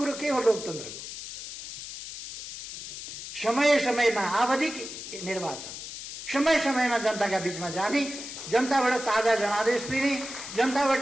के हो लोकतन्त्रको? समय समयमा आवधिक निर्वाचन, समय समयमा जनताका बीचमा जाने, जनताबाट ताजा जनादेश लिने, जनताबाट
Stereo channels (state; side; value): noise; left; hiss, 10 dB below the sound